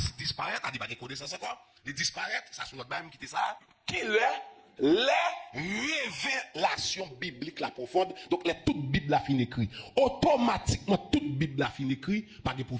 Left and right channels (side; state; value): both; identical; correlation 1.00